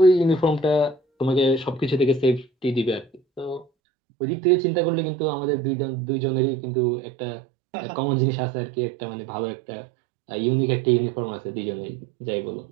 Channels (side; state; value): left; drops out; at 3.7 s